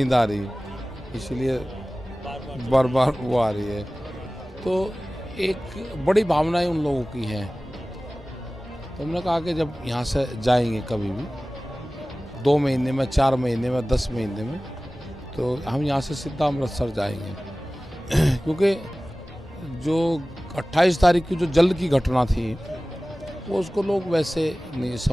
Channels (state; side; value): normal; both; correlation 0.98